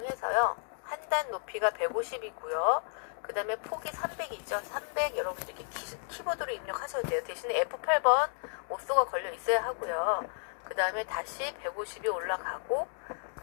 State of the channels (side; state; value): right; silent; 56 dB below the other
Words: 한 단 높이가 150이고요. 그 다음에 폭이 300이죠. 300 여러분들 이렇게 키보드로 입력하셔도 돼요. 대신에 F8번 오쏘가 걸려 있어야 하고요. 그 다음에 다시 150이 올라가고